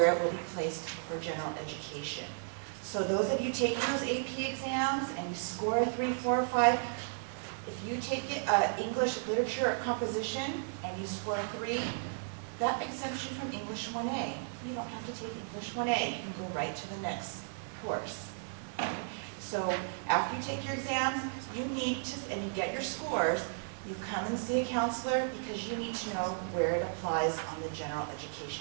it will be placed for general education. So those of you taking those AP exams and you score a 3, 4, or 5, if you take English, literature, or composition and you score a 3, that exemption from English 1A. You don't have to take English 1A. You can go right to the next course. So after you take your exams, you need to, and you get your scores, you come and see a counselor because you need to know where it applies on the general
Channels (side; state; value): left; silent; digital silence